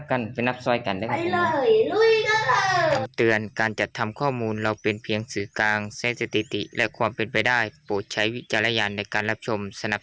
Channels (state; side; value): identical; both; correlation 1.00